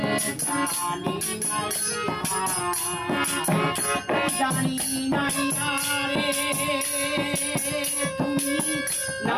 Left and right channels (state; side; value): identical; both; correlation 1.00